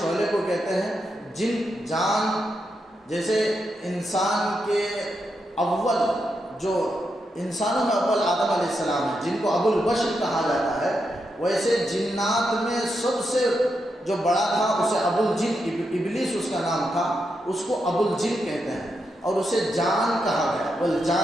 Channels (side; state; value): both; normal; correlation 0.84